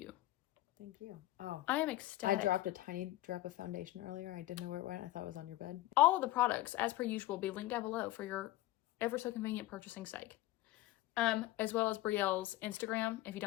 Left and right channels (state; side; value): quieter; right; 16.7 dB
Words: Thank you. Oh. I am ecstatic. I dropped a tiny drop of foundation earlier. I didn't know where it went. I thought it was on your bed. All of the products, as per usual, will be linked down below for your ever so convenient purchasing sake. As well as Brielle's Instagram. If you